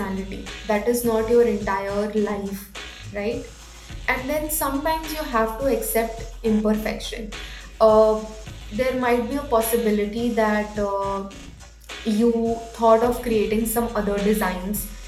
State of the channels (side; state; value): both; identical; correlation 1.00